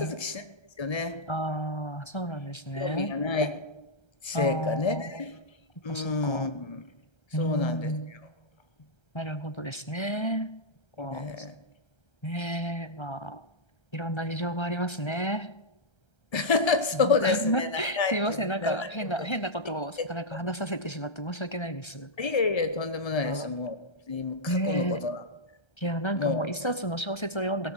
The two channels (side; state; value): right; late; 1.3 ms